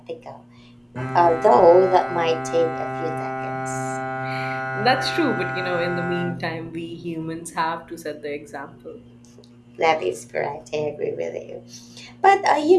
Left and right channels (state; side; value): identical; both; correlation 1.00